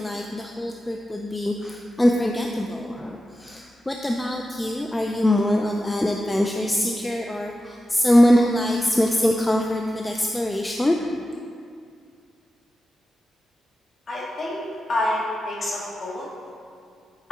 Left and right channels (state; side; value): normal; both; correlation 0.92